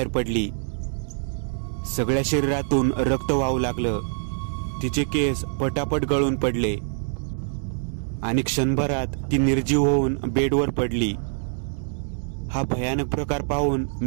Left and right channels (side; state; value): left; silent; digital silence